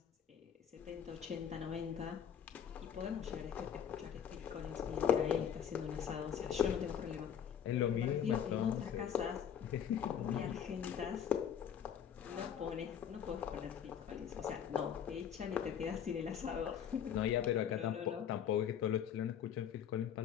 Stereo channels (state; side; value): quieter; right; 8.5 dB